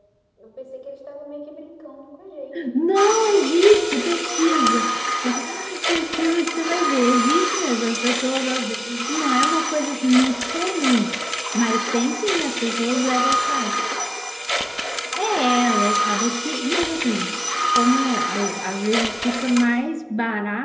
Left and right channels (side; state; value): both; identical; correlation 1.00